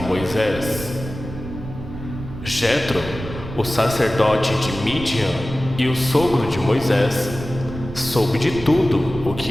Jetro, o sacerdote de Midian e o sogro de Moisés, soube de tudo o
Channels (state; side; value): noise; right; rumble, 10 dB below the sound